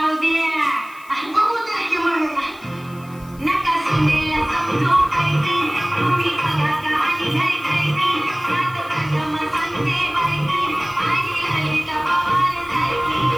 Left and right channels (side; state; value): left; noise; hiss, 25 dB below the sound